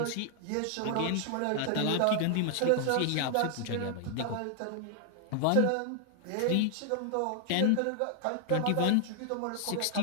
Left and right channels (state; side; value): different; both; correlation 0.00